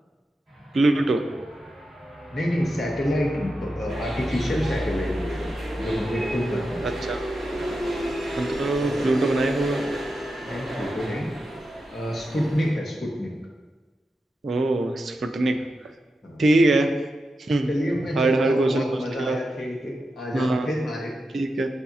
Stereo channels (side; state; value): both; normal; correlation 0.89